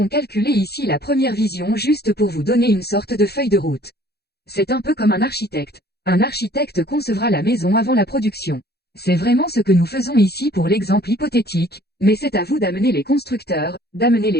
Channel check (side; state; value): right; late; 0.47 ms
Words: calculé ici la première vision juste pour vous donner une sorte de feuille de route. C'est un peu comme un architecte. Un architecte concevra la maison avant la production. C'est vraiment ce que nous faisons ici pour l'exemple hypothétique, mais c'est à vous d'amener les constructeurs, d'amener